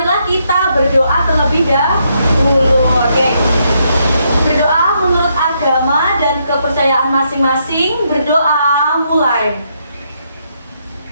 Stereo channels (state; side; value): inverted; both; correlation -0.76